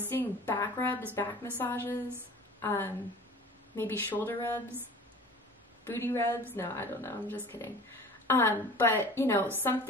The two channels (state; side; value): normal; both; correlation 0.42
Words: back rubs, back massages, maybe shoulder rubs, booty rubs. No, I don't know. I'm just kidding. But, you know,